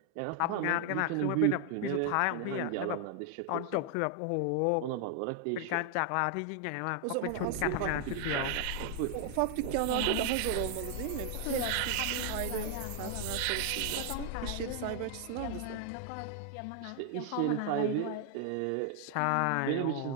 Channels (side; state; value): both; different; correlation 0.00